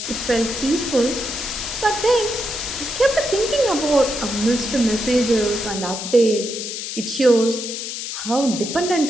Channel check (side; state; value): left; noise; hiss, 6 dB below the sound